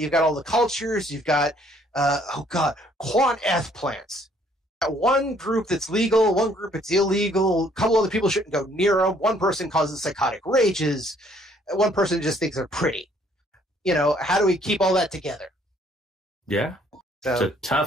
got all the cultures, you've got, quant eth plants. One group that's legal, one group that's illegal, a couple other people shouldn't go near them, one person causes psychotic rages, one person just thinks they're pretty. How do we keep all that together? Yeah, so, it's a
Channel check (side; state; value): both; normal; correlation 0.63